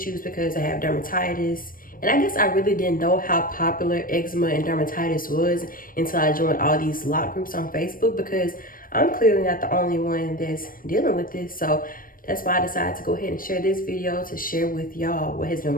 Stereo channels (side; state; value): right; late; 0.41 ms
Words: because I have dermatitis. And I guess I really didn't know how popular eczema and dermatitis was until I joined all these Locs groups on Facebook, because I'm clearly not the only one that's dealing with this. So that's why I decided to go ahead and share this video to share with y'all what has been